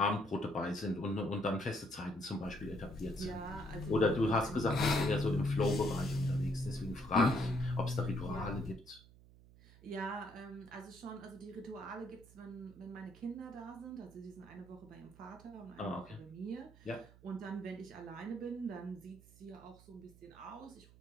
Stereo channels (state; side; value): noise; right; hum, 22 dB below the sound